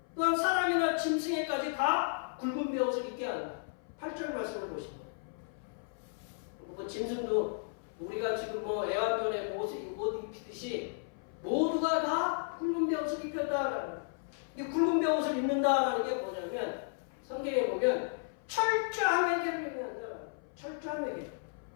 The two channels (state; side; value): silent; right; 55 dB below the other